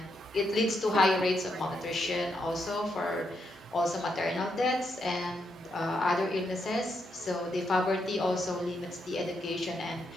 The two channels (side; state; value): both; normal; correlation 0.80